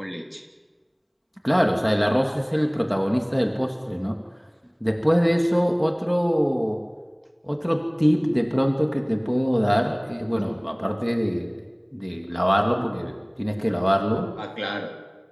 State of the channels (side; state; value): both; identical; correlation 1.00